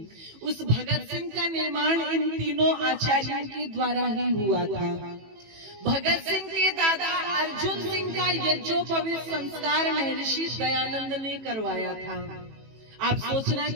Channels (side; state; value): left; late; 18 ms